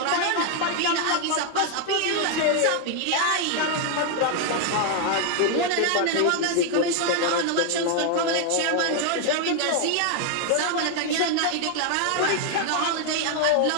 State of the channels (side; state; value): both; different; correlation 0.00